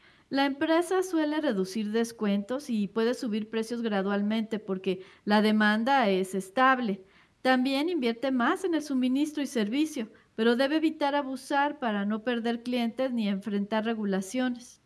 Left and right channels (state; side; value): identical; both; correlation 1.00